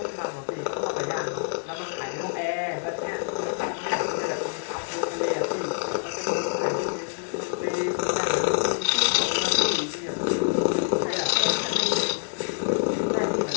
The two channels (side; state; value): right; silent; 61 dB below the other